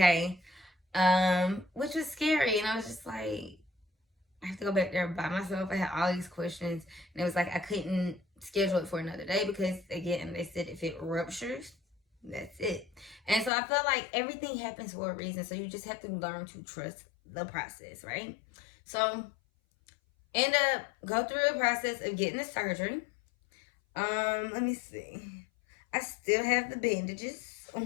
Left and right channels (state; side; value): drops out; right; at 13.5 s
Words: which was scary. And I was just like, I have to go back there by myself. I had all these questions, and it was like I couldn't schedule it for another day because, again, they said if it ruptures, that's it. And so I felt like everything happens for a reason. So you just have to learn to trust the process, right? So end up go through the process of getting the surgery. Let me see. I still have the bandages